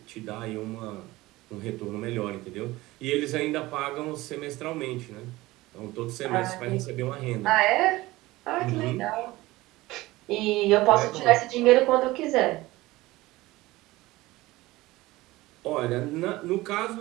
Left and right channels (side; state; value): left; quieter; 19.0 dB